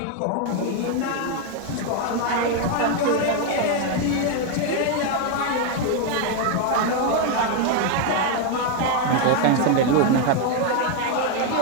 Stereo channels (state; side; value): different; both; correlation 0.01